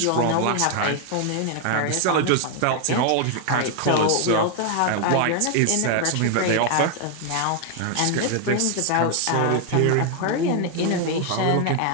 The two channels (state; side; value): different; both; correlation 0.00